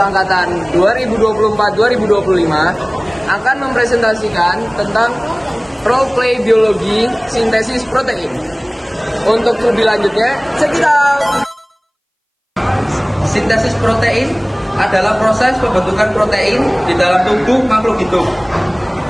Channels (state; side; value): identical; both; correlation 1.00